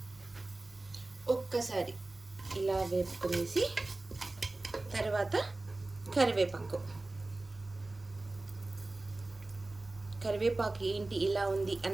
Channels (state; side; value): quieter; left; 3.0 dB